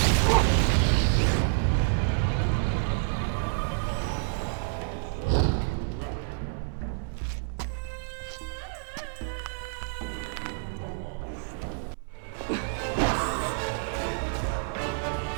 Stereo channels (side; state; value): left; silent; 59 dB below the other